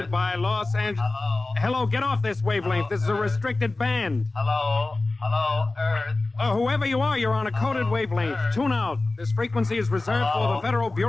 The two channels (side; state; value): right; quieter; 3.2 dB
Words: by Los Angeles. Hello, get off this wavelength. This is a restricted band. Hello, Earth. Whoever you are, you're on a coded wavelength. Tune out. This frequency is reserved for the Federal